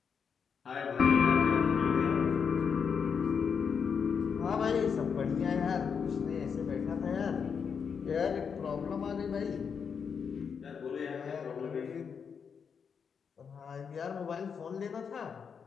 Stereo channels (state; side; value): quieter; right; 6.5 dB